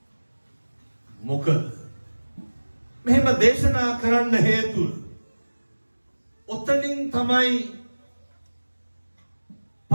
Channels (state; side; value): inverted; both; correlation -1.00